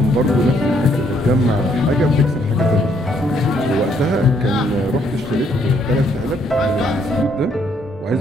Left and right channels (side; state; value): both; normal; correlation 0.69